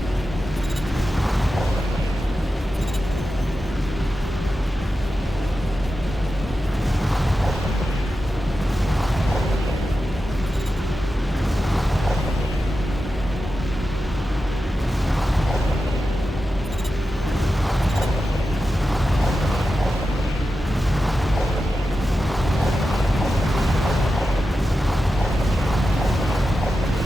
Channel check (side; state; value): both; normal; correlation 0.91